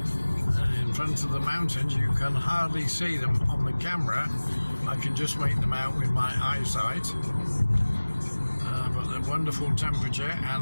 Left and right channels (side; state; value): both; inverted; correlation -1.00